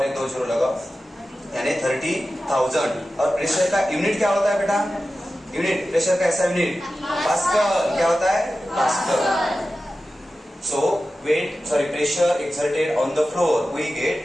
एक 2 जीरो लगा, यानी 30,000। और प्रेशर का यूनिट क्या होता है बेटा? यूनिट प्रेशर का ऐसा यूनिट पास्कल। क्या होता है? Pascal. So pressure exerted on the floor we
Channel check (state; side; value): normal; both; correlation 0.94